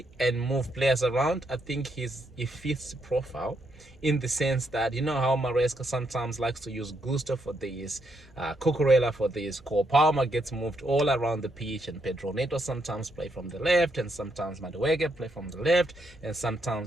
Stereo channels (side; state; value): both; normal; correlation 0.77